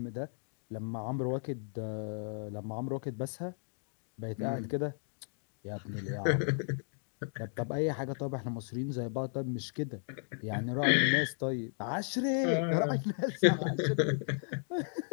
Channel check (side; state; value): right; silent; 55 dB below the other